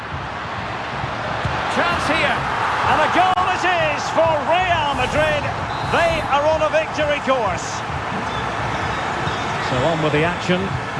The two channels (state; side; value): identical; both; correlation 1.00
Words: Chance here, and a goal it is for Real Madrid. They are on a victory course. So on with the action,